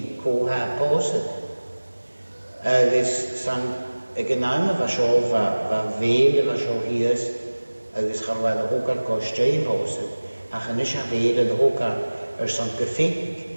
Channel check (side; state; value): both; inverted; correlation -1.00